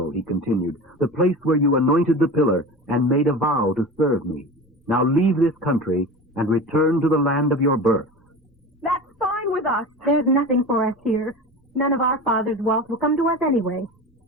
he continued, the place where you anointed the pillar and made a vow to serve me. Now leave this country and return to the land of your birth. That's fine with us. There's nothing for us here. None of our father's wealth will come to us anyway.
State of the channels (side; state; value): both; normal; correlation 0.32